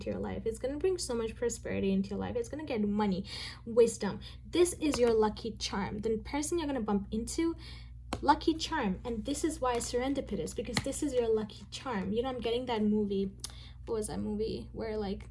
your life. It's going to bring so much prosperity into your life. It's going to get money, wisdom. This is your lucky charm. The person you're going to bump into, lucky charm. And this is why Serendipitous, because this is your lucky charm. You know, I'm getting that movie. What was that movie where like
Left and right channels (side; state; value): both; identical; correlation 1.00